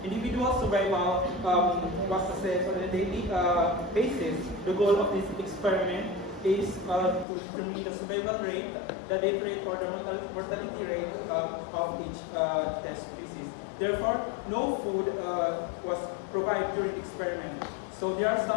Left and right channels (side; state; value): right; drops out; at 7.2 s